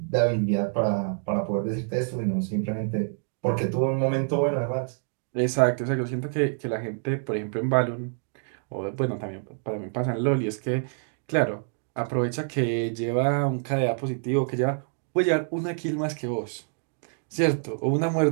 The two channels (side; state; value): left; silent; 58 dB below the other